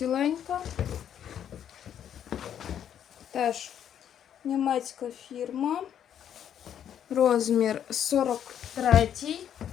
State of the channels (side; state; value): right; quieter; 9.5 dB